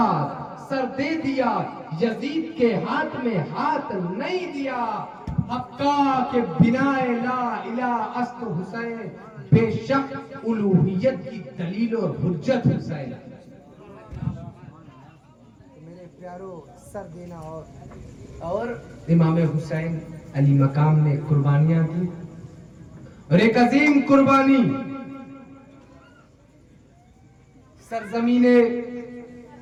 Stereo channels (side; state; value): both; identical; correlation 1.00